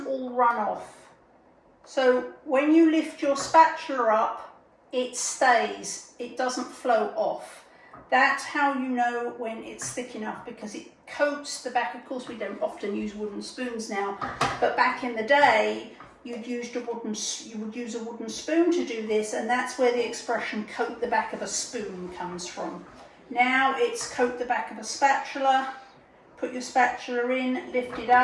all run off. So when you lift your spatula up, it stays, it doesn't flow off. That's how you know when it's thick enough, because it coats the back. Of course, we don't often use wooden spoons now, but back in the day, you would use a wooden spoon to do this, and that's where the expression coat the back of a spoon comes from. Now it's coat the back of a spatula. Put your spatula in, lift it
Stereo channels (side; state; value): both; identical; correlation 1.00